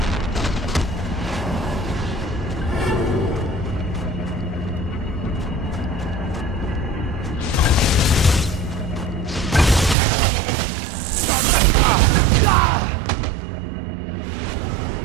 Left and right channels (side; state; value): left; drops out; at 10.0 s